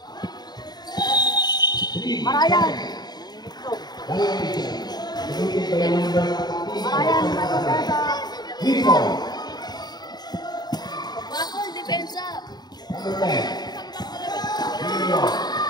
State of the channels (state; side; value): late; right; 0.20 ms